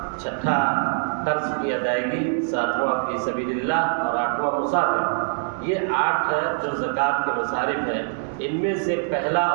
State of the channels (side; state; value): left; silent; digital silence